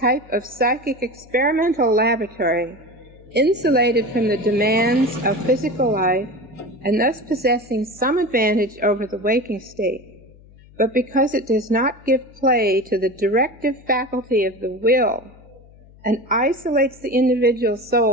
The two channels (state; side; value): noise; left; hum, 24 dB below the sound